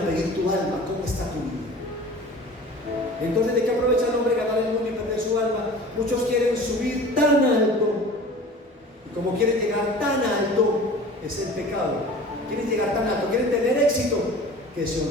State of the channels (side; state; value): both; normal; correlation 0.41